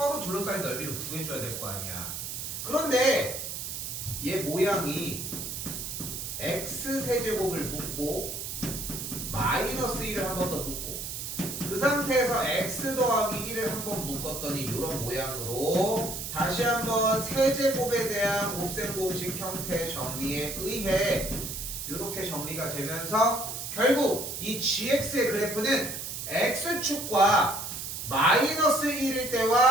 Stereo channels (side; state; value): right; noise; hiss, 6 dB below the sound